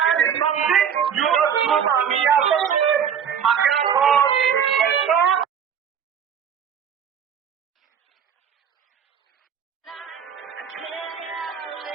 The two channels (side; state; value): left; quieter; 7.9 dB